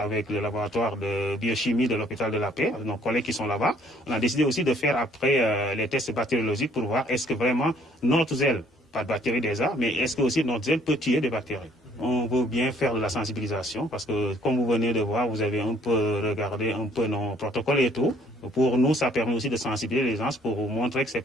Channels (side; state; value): both; normal; correlation 0.61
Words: le laboratoire de biochimie de l'hôpital de la Paix, nos collègues qui sont là-bas, on a décidé aussi de faire après les tests bactériologiques pour voir est-ce que vraiment notre gel, pas de bactéries déjà, mais est-ce que aussi notre gel peut tuer des bactéries. On veut bien faire de la sensibilisation parce que, comme vous venez de voir, vous avez un peu regardé un peu nos protocoles et tout. Pour nous, ça permet aussi de sensibiliser les gens pour vous montrer que ce n'est